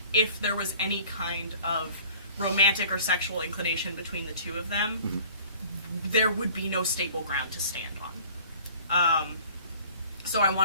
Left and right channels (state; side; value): inverted; both; correlation -0.50